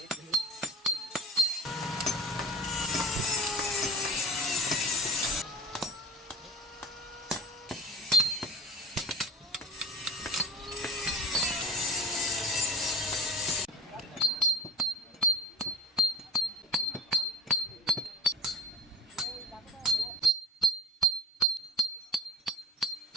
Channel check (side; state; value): both; normal; correlation 0.43